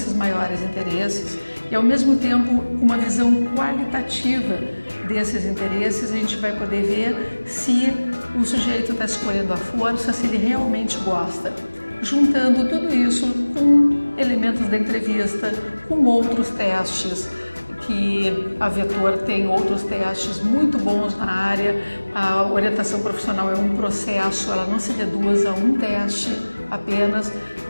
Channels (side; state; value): both; inverted; correlation -1.00